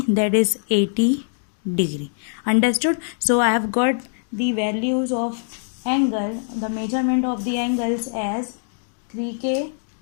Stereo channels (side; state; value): right; silent; digital silence